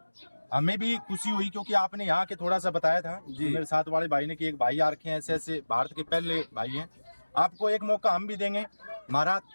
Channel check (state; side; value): inverted; both; correlation -1.00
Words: हमें भी खुशी हुई क्योंकि आपने यहाँ के थोड़ा सा बताया था जी। मेरे साथ वाले भाई ने कि एक भाई आ रखे हैं, ऐसे ऐसे भारत के पहले भाई हैं। आपको एक मौका हम भी देंगे। हमारा